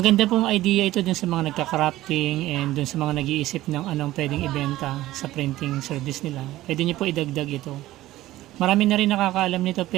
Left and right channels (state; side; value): quieter; left; 15.9 dB